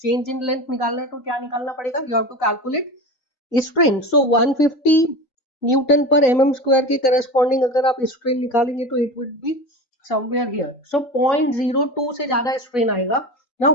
Change in length निकालना है तो क्या निकालना पड़ेगा? You have to calculate strain. So 150 newton पर mm स्क्वायर के करस्पॉन्डिंग अगर आप स्ट्रेन निकालेंगे तो it would be somewhere here. So 0.02 से ज्यादा स्ट्रेन आएगा. नाउ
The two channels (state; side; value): late; right; 3.9 ms